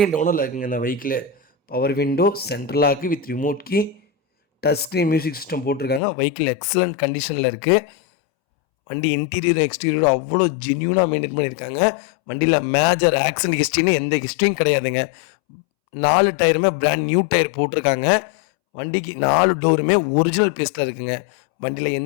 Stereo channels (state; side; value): drops out; right; at 6.0 s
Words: ஓனரில் இருக்குங்க இந்த vehicle. Power window, central lock with remote key, touch screen music system போட்டிருக்காங்க. வெஹிக்கிள் எக்ஸலண்ட் கண்டிஷனில் இருக்குது. வண்டி இன்டீரியர் எக்ஸ்டீரியர் அவ்வளோ ஜென்யூனாக மெயின்டைன் பண்ணியிருக்காங்க. வண்டியில் மேஜர் ஆக்சிடென்ட் ஹிஸ்ட்ரின்னு எந்த ஹிஸ்ட்ரியும் கிடையாதுங்க. 4 டயருமே பிராண்ட் நியூ டயர் போட்டிருக்காங்க. வண்டிக்கு 4 டோருமே ஒரிஜினல் பேஸ்ட்டில் இருக்குங்க. வண்டியில்